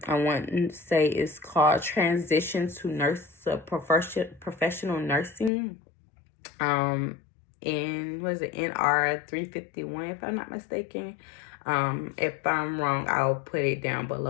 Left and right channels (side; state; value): right; drops out; at 5.5 s